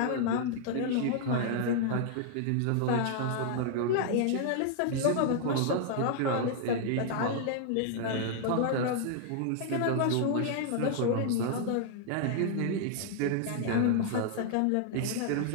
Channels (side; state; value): both; different; correlation -0.01